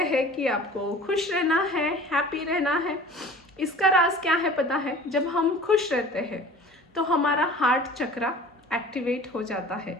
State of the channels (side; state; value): both; normal; correlation 0.43